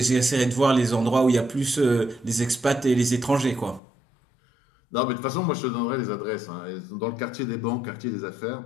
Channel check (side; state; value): right; drops out; at 3.8 s